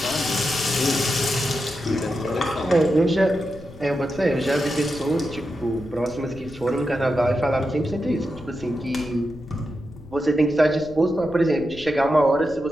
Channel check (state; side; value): noise; left; rumble, 18 dB below the sound